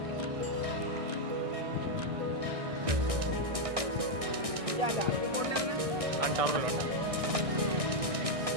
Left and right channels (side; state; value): left; late; 1.6 ms